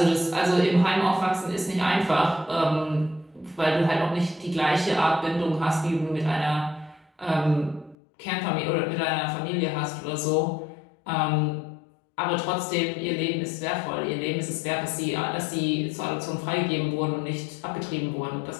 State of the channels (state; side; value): drops out; right; at 8.0 s